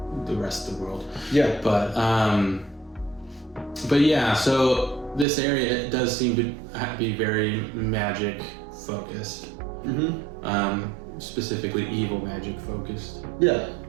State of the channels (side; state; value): left; drops out; at 5.2 s